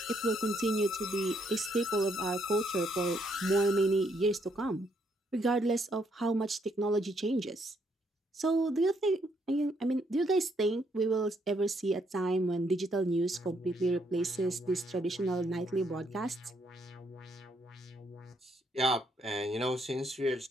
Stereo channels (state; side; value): normal; both; correlation 0.72